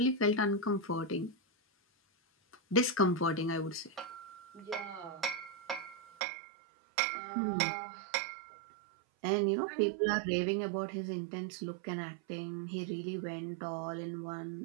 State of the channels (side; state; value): left; drops out; at 6.0 s